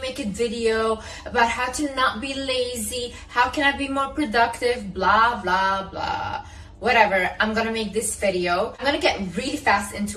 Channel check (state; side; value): identical; both; correlation 1.00